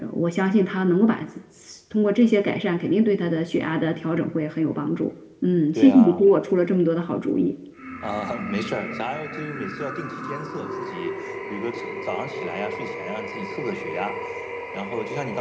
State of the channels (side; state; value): both; identical; correlation 1.00